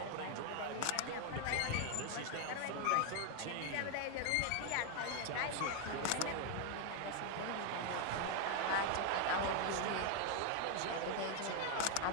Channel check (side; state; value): both; different; correlation 0.01